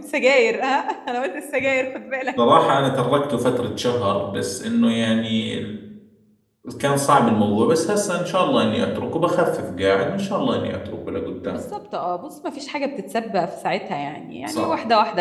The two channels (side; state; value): both; identical; correlation 1.00